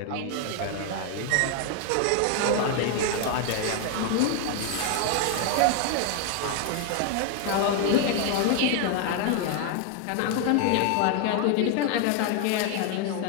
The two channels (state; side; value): different; both; correlation 0.00